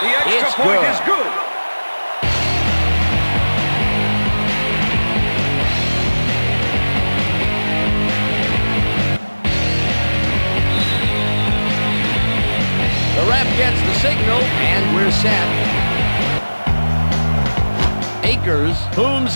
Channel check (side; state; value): both; inverted; correlation -1.00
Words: The extra it's point good. is good. The ref gets the signal, and we're set. Akers booms